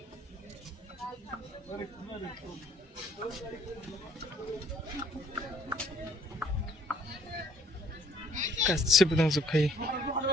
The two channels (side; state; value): both; normal; correlation 0.61